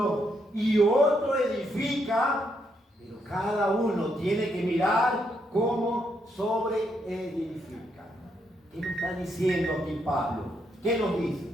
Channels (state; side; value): normal; both; correlation 0.77